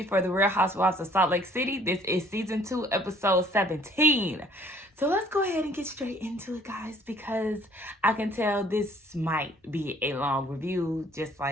for The Real Housewives of Salt Lake City. This is season 2, episode 17. So let's go ahead and get straight into it, guys, because I can tell this might be a long review, just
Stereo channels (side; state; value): both; normal; correlation 0.58